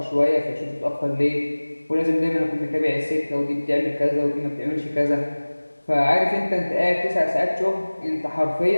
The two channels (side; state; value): both; inverted; correlation -1.00